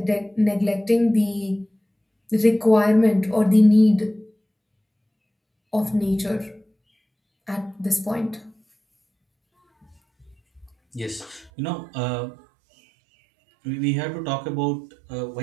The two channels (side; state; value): left; drops out; at 11.5 s